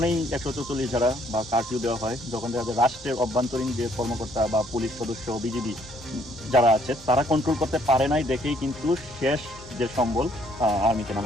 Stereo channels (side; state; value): both; normal; correlation 0.66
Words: 144 ধারা বা কারফিউ দেওয়া হয় যখন দেখা যায় রাষ্ট্রের অভ্যন্তরীণ যে কর্মকর্তা বা পুলিশ সদস্য, বিজিবি যারা আছে তারা কন্ট্রোল করতে পারে নাই দেখেই কিন্তু শেষ যে সম্বল আর্মিকে